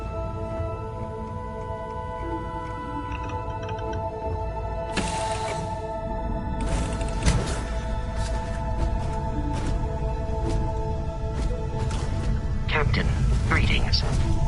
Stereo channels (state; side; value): identical; both; correlation 1.00